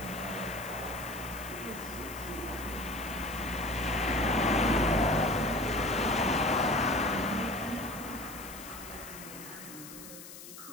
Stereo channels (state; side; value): noise; left; hiss, 14 dB below the sound